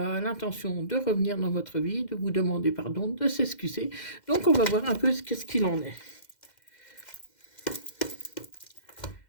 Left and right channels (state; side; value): late; right; 2.1 ms